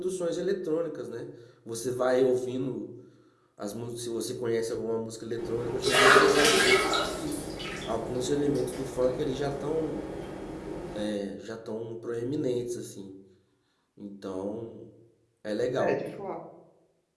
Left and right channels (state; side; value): identical; both; correlation 1.00